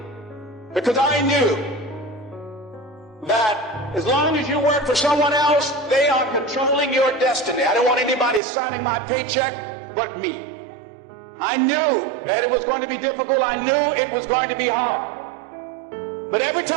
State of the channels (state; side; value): drops out; left; at 8.4 s